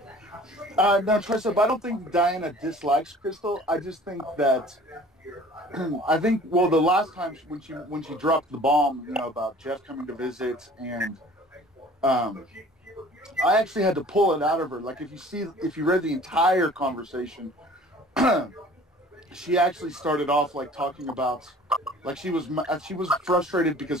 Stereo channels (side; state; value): both; normal; correlation 0.49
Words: No, Tricep, I don't think Diana dislikes Krystal. I just think that the last time when she dropped the bomb, about Jeff coming to visit, and I actually had to pull it out of her. Like, if you read the entire conversation, she actually started off talking about, she was frustrated